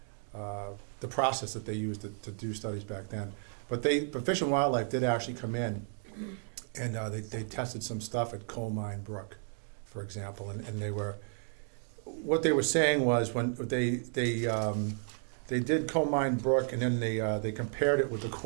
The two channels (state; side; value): silent; left; 56 dB below the other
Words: the process that they used to do studies back then. But Fish and Wildlife did actually come in, and they tested some stuff at Coal Mine Brook, for example, and what they were saying was when they did Coal Mine Brook, and then they compared it with the